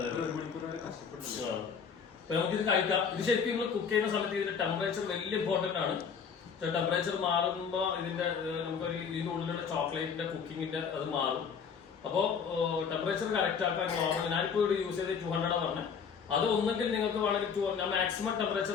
നമുക്കിത് കഴിക്കാം. ഇത് ശരിക്കും നിങ്ങൾ കുക്ക് ചെയ്യുന്ന സമയത്ത് ഇതിന്റെ ടെമ്പറേച്ചർ വലിയ ഇമ്പോർട്ടന്റ് ആണ്. ടെമ്പറേച്ചർ മാറുമ്പോ ഇതിന്റെ നമുക്കൊരു ഇതിന്റെ ഉള്ളിലുള്ള ചോക്ലേറ്റിന്റെ കുക്കിങ്ങിന്റെ അത് മാറും. അപ്പോ ടെമ്പറേച്ചർ കറക്റ്റ് ആക്കാൻ നോർമൽ. ഞാനിപ്പോ ഇവിടെ യൂസ് ചെയ്ത് 200 പറഞ്ഞത്. അത് ഒന്നെങ്കിൽ നിങ്ങൾക്ക് വേണമെങ്കിൽ ഞാൻ മാക്സിമം ടെമ്പറേച്ചർ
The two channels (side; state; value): right; quieter; 6.5 dB